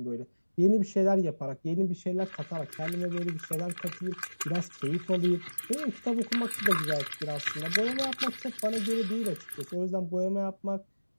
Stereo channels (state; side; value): inverted; both; correlation -1.00